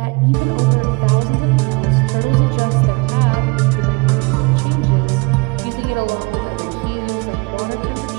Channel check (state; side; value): quieter; left; 27.9 dB